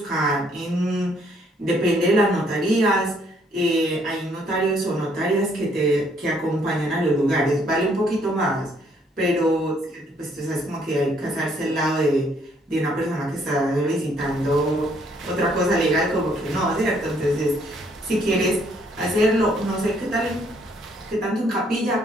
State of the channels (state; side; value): normal; both; correlation 0.67